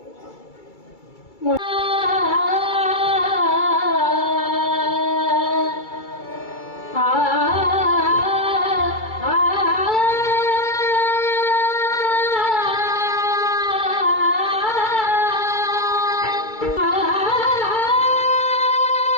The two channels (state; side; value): late; right; 2.3 ms